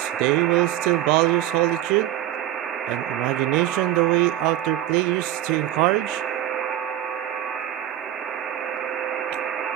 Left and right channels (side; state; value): left; quieter; 12.8 dB